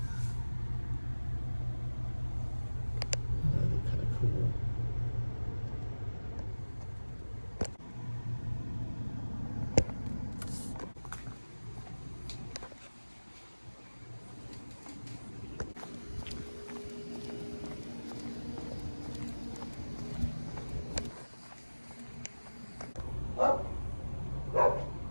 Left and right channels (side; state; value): both; inverted; correlation -1.00